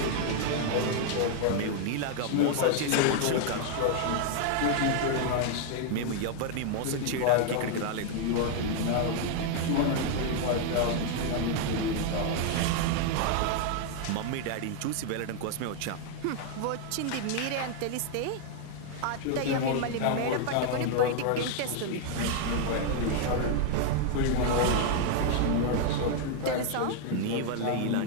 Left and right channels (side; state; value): both; different; correlation 0.00